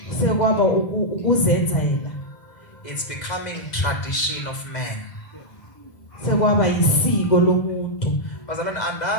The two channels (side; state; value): right; late; 2.0 ms